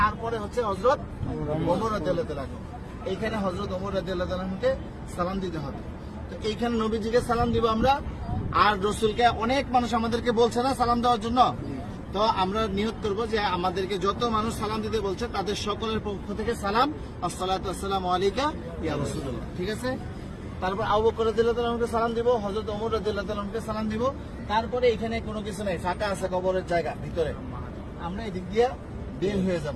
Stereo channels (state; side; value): identical; both; correlation 1.00